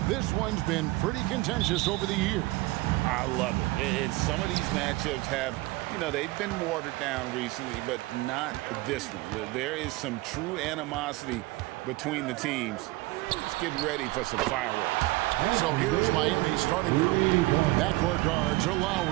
this one's been pretty contentious over the years. I love it. And some of these matchups have, you know, they've been watered down recently, but not this one. There is some true animosity between the teams. Let's get ready for some fireworks. So here's Miami's starting group. Backcourt guards are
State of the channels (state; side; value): quieter; left; 20.6 dB